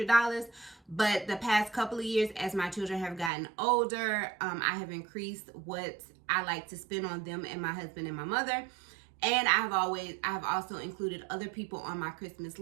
But the past couple of years, as my children have gotten older, I have increased what I like to spend on them and my husband and my mother. And I have also included other people on my Christmas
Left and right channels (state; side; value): drops out; left; at 3.3 s